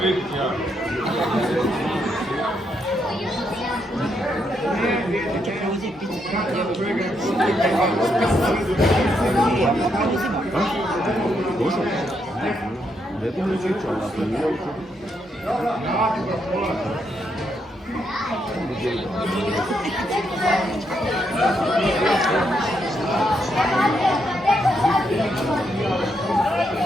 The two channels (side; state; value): both; normal; correlation 0.78